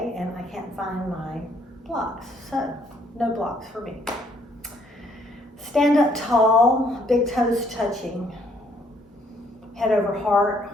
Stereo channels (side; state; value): both; normal; correlation 0.66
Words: and I can't find my blocks, so no blocks for me. Stand up tall, big toes touching. Head over heart,